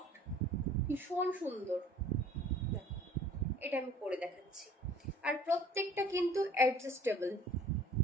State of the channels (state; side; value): normal; both; correlation 0.51